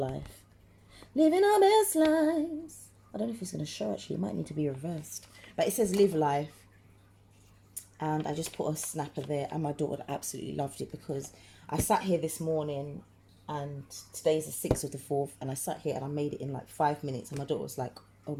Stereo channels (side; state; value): both; identical; correlation 1.00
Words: living our best lives. I don't know if it's going to show, actually, it might need to be reversed, but it says live life. And I just put a snapper there, and my daughter absolutely loved it, because I sat here this morning, and today's the 6th of the 4th, and I sat here and I made it in like 5 minutes, and my daughter was like, oh